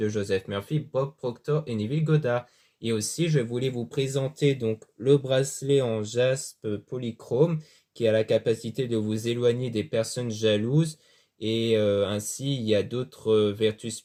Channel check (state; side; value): identical; both; correlation 1.00